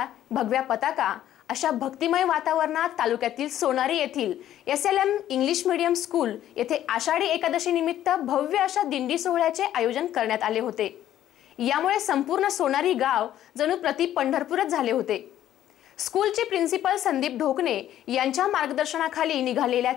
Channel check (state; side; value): quieter; right; 12.0 dB